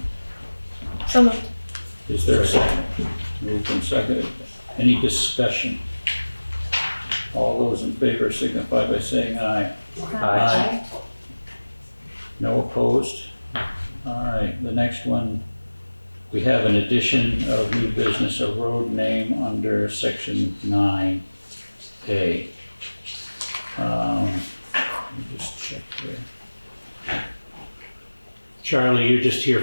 So moved. Is there a second? Moved and seconded. Any discussion? All those in favor signify by saying aye. Aye. No opposed? All right, the next one, we have an addition of new business, a road name under section 9A. Let me just check here. Charlie, you're just here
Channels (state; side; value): inverted; both; correlation -1.00